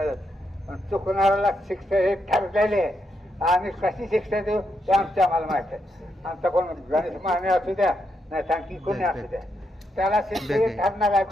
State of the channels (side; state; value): both; normal; correlation 0.81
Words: पण चुकणाऱ्याला शिक्षा हे ठरलेले आहे. आणि कशी शिक्षा देऊ ते आम्हाला माहित आहे. आमचा कोण गणेश माने असू द्या, नाही तर आणखी कोणी असू द्या, त्याला शिक्षा हे ठरणार आहे.